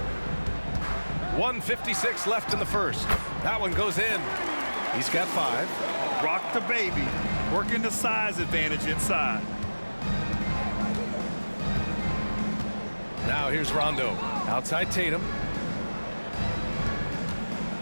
1:56 left in the first. That one goes in. He's got 5. Rock the baby, working the size advantage inside. Now here's Rondo. Outside Tatum.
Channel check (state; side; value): inverted; both; correlation -1.00